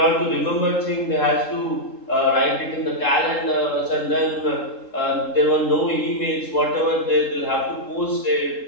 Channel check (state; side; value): late; right; 3.7 ms